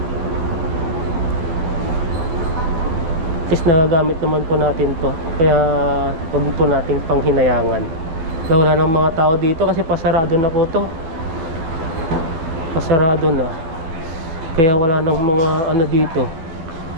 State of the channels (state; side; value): late; left; 12 ms